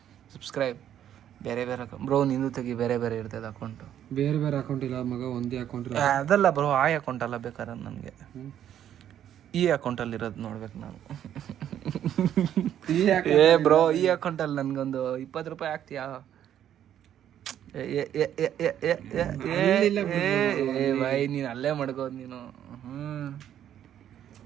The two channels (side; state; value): left; quieter; 10.5 dB